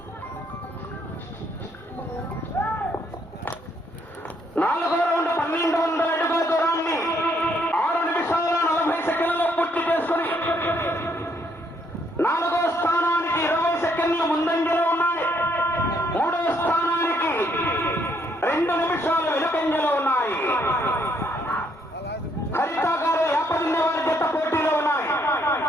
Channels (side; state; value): both; normal; correlation 0.70